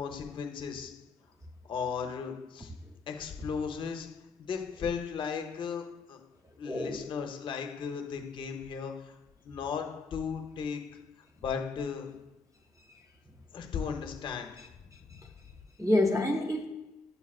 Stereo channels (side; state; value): right; quieter; 3.6 dB